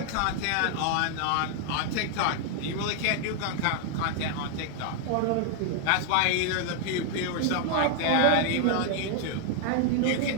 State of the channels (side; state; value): both; different; correlation 0.00